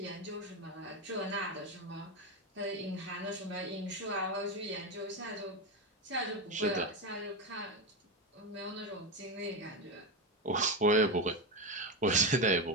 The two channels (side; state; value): both; normal; correlation 0.13